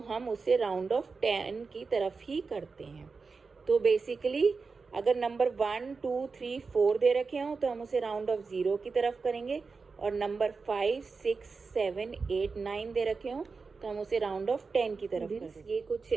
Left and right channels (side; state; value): left; quieter; 4.6 dB